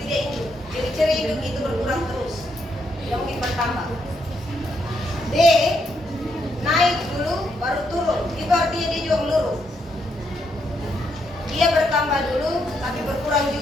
dia induk. Ciri-ciri induk itu berkurang terus, tidak mungkin bertambah. D, naik dulu, baru turun, itu artinya dia juga melurus. Dia bertambah dulu, tapi berkurang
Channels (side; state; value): both; normal; correlation 0.77